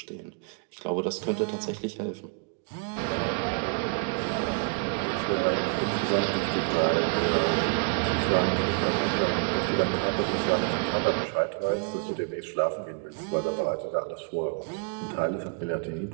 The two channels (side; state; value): left; quieter; 35.8 dB